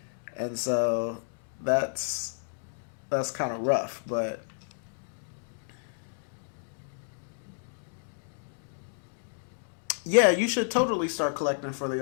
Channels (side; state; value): right; silent; digital silence